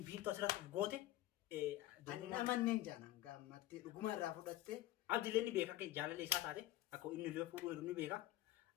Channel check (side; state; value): right; quieter; 15.4 dB